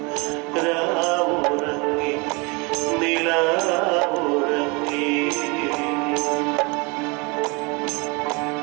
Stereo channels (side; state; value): left; quieter; 28.3 dB